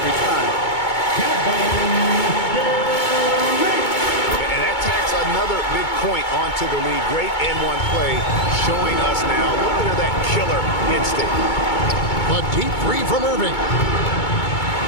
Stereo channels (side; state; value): right; late; 2.2 ms